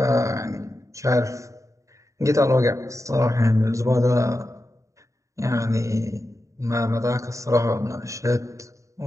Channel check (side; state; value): left; late; 0.15 ms